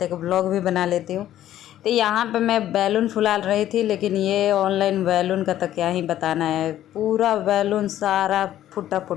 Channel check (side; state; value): right; quieter; 12.5 dB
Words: एक व्लॉग भी बना लेती हूँ। तो यहाँ पे मैं बैलून फुला रही थी, लेकिन ये ऑनलाइन बैलून का तो क्या ही बताना है। पूरा बैलून सारा फुटा